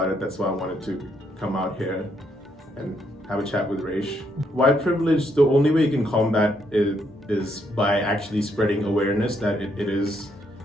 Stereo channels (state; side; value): normal; both; correlation 0.74